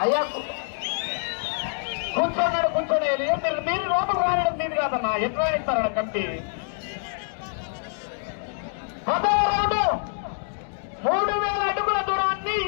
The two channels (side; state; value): right; silent; digital silence